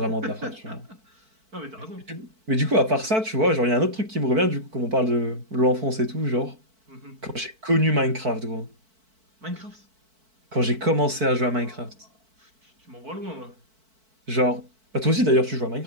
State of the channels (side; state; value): left; late; 4.5 ms